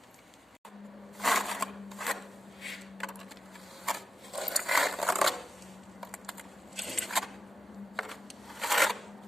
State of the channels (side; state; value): both; normal; correlation 0.90